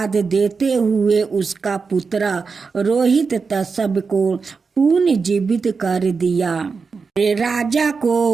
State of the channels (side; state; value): left; quieter; 5.0 dB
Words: देते हुए उसका पुत्र रोहित तसब को पुनर्जीवित कर दिया। राजा को